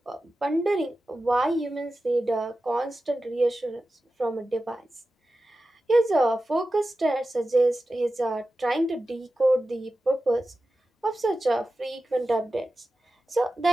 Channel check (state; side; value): normal; both; correlation 0.94